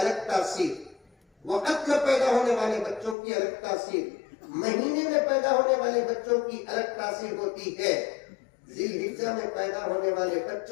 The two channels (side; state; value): right; drops out; at 3.2 s